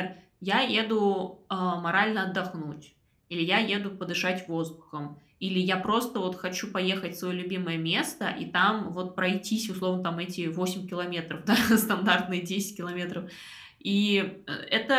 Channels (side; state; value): both; identical; correlation 1.00